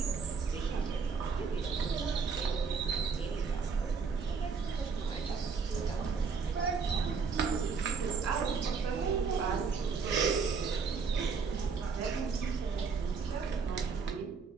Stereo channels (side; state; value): left; quieter; 5.4 dB